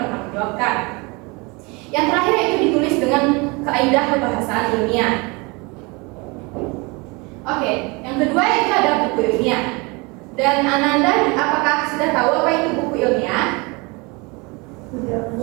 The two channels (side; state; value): left; quieter; 27.4 dB